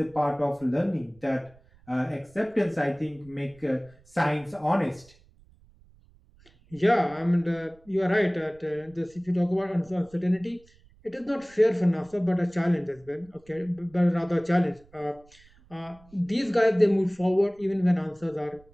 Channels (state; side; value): noise; right; rumble, 28 dB below the sound